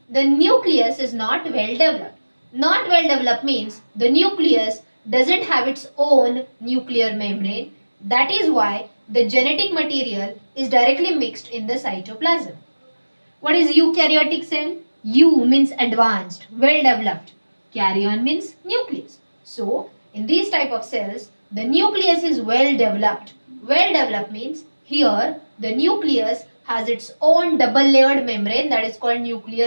the nucleus is not well developed. Not well developed means the nucleus doesn't have its own nuclear membrane. That is why the genetic material is directly mixed in the cytoplasm. What is eukaryotic cell? Eu means advanced, well developed. Karyon means nucleus. So, in these type of cells, the nucleus is well developed. Well developed means here the nucleus has its own double layered membrane, that is called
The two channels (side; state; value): both; inverted; correlation -1.00